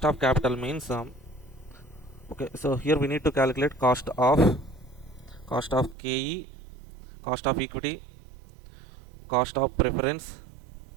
of capital means, okay, so here we need to calculate cost of KE, cost of equity, cost of preference,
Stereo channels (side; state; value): left; drops out; at 6.0 s